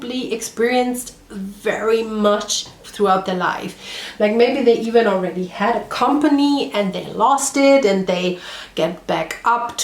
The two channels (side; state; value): both; identical; correlation 1.00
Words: experienced very much throughout their life. Like maybe they even already had a company and they lost it and they get back up